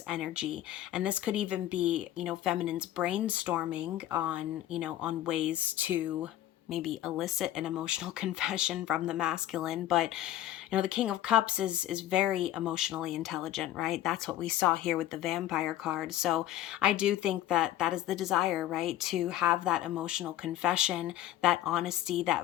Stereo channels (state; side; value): quieter; right; 13.2 dB